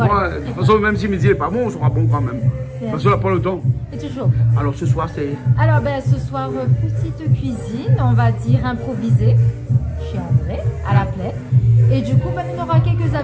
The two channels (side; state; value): both; identical; correlation 1.00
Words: Moi, de toute façon, même si midi n'est pas bon, on sera bon quand même. Parce qu'on n'a pas le temps. Et toujours. Alors ce soir, c'est. Alors, ben, ce soir, petite cuisine, on va dire improvisée, chez André, à la plaie. Et du coup, ben, on aura quelques